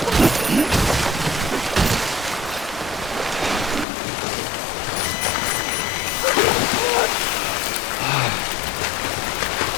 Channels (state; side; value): drops out; right; at 3.9 s